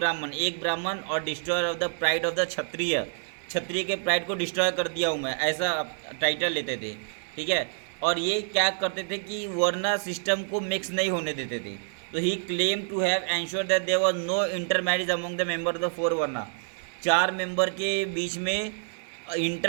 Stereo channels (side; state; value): left; silent; 60 dB below the other